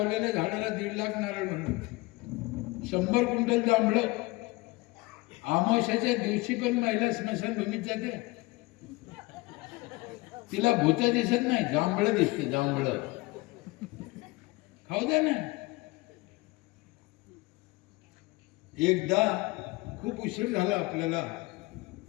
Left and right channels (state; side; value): quieter; right; 22.6 dB